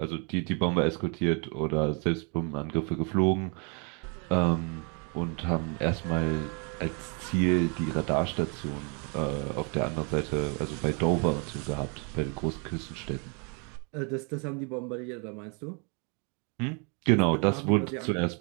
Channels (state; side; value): quieter; left; 36.0 dB